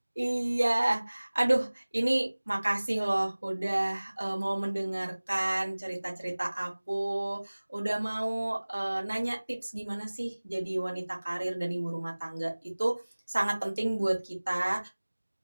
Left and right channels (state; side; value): inverted; both; correlation -1.00